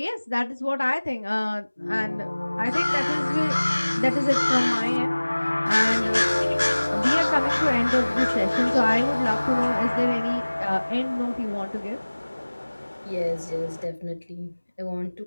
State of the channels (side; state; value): both; inverted; correlation -1.00